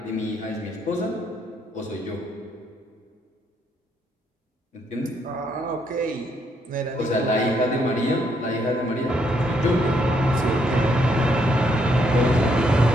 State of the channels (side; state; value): both; normal; correlation 0.73